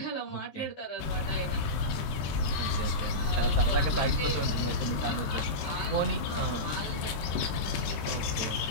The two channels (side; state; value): right; late; 14 ms